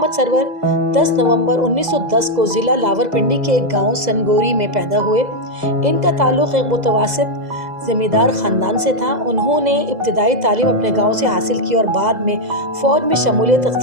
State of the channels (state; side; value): late; left; 2.0 ms